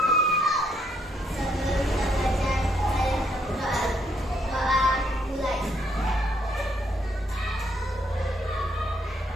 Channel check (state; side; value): normal; both; correlation 0.72